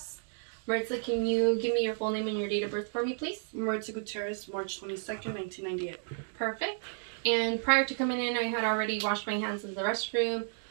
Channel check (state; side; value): silent; left; 56 dB below the other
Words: Maritza, can you give me your full name and your date of birth for me, please? Maritza Gutierrez, March 22nd, 1998. Perfect. And prior to coming in, I had already washed my hands in the restroom.